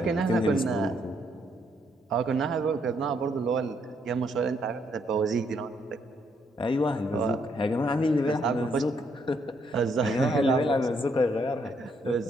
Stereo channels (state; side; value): normal; both; correlation 0.73